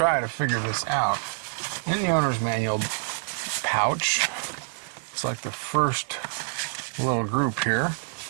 to figure this out. In the owner's manual pouch, it's like the first little group here,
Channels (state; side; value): silent; left; 59 dB below the other